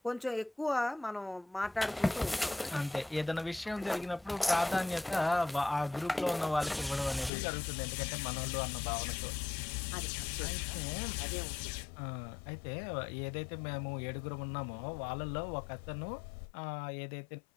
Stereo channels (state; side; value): drops out; right; at 7.3 s